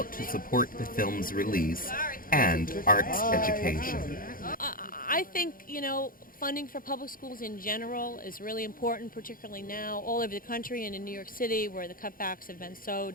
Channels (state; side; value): late; right; 0.41 ms